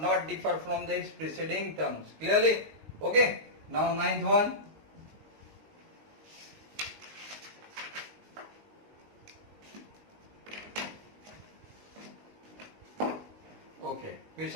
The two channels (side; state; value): left; late; 19 ms